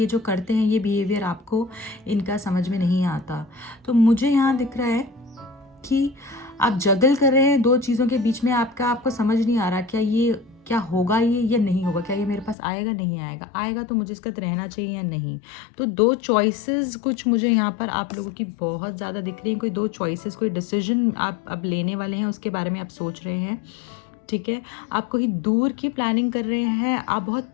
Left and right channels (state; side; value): drops out; right; at 12.6 s